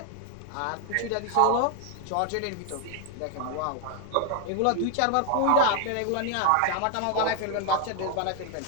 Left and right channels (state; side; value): different; both; correlation 0.00